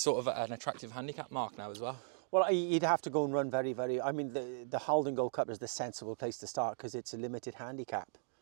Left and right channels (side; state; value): left; silent; digital silence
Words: sort of at an attractive handicap mark now as well? Well, he'd have to go and run very, very... I mean, the Haldon Gold Cup is the sensible place to start because it's a limited handicap.